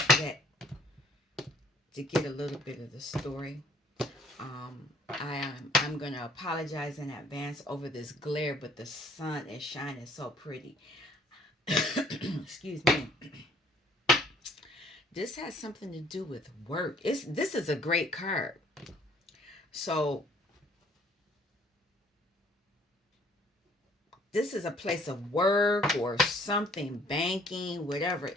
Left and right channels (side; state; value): both; normal; correlation 0.59